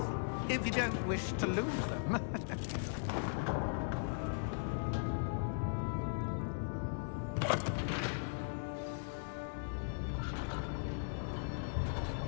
if you don't wish to lose them.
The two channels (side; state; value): right; silent; digital silence